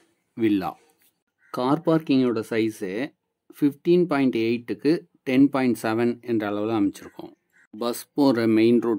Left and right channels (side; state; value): both; identical; correlation 1.00